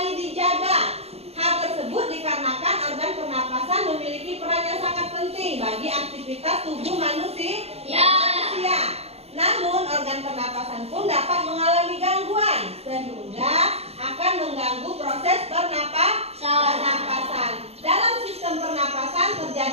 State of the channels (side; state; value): left; late; 0.30 ms